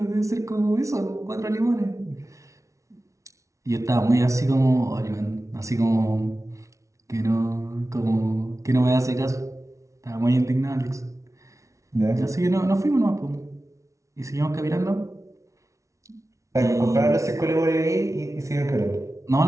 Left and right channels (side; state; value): left; late; 0.15 ms